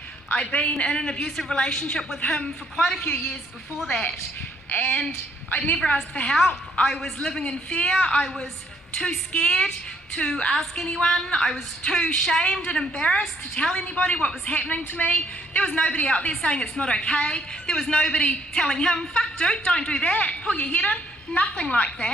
I'd been in an abusive relationship with him for quite a few years before that, and I'd never asked for help. I was living in fear. I was too scared to ask anyone. I was too shamed and embarrassed to tell anybody what was happening to me. There was nobody out there saying it's not okay. There was nobody telling him, fuck dude, don't do that, pull your head in. Nothing like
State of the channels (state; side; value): normal; both; correlation 0.67